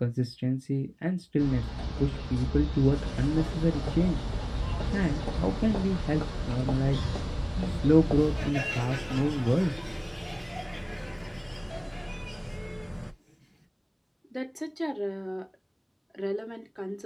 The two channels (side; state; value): both; identical; correlation 1.00